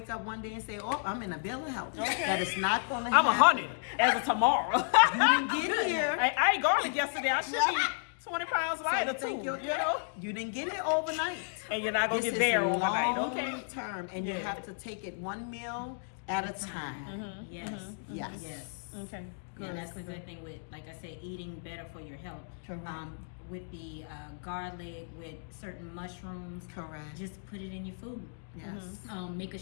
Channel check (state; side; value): silent; right; digital silence